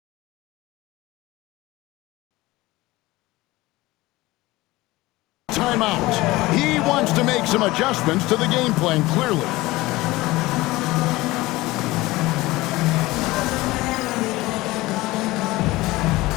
timeout. He wants to make some adjustments to the game plan, clearly.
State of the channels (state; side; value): quieter; right; 19.6 dB